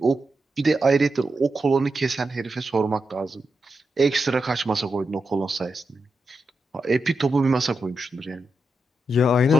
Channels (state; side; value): normal; both; correlation 0.87